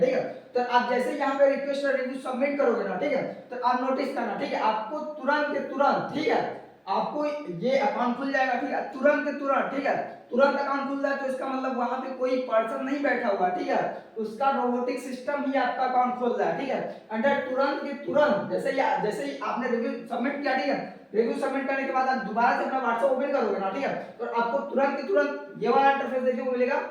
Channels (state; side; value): identical; both; correlation 1.00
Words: है। तो आप जैसे ही यहाँ पे रिक्वेस्ट और रिव्यू सबमिट करोगे ना, ठीक है, तो आप नोटिस करना, ठीक है, आपको तुरंत के तुरंत, ठीक है, आपको ये अकाउंट खुल जाएगा, ठीक है, तुरंत के तुरंत, ठीक है, तुरंत अकाउंट खुल जाए तो इसका मतलब वहां पे कोई पर्सन नहीं बैठा हुआ, ठीक है, उसका रोबोटिक सिस्टम ही आपका अकाउंट खोल रहा है, ठीक है। अंडर तुरंत के तुरंत जैसे ही आपने रिव्यू सबमिट किया, ठीक है, रिव्यू सबमिट करने के बाद आप दोबारा से अपना व्हाट्सएप ओपन करोगे ना, ठीक है, तो आपको तुरंत के तुरंत ये वाला इंटरफेस देखने को मिलेगा